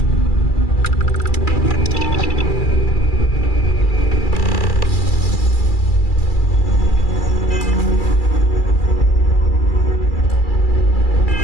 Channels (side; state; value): right; late; 2.3 ms